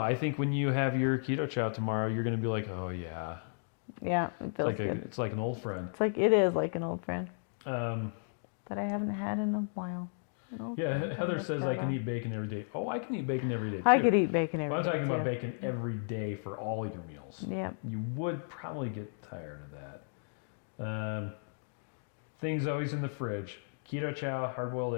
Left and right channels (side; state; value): right; silent; digital silence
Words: think when you have your Keto Chow tomorrow, you're gonna be like, oh yeah. Yeah, it feels good. It's like an old friend. It is like an old friend Um, that I haven't had in a while. yeah, Heather says I can eat bacon every day. Oh, I can eat bacon every day too. I could eat bacon every But I'm day. talking about bacon every day for all your meals. Yeah. You would probably get tired of that. Things always in the fridge. Keto Chow, hard-boiled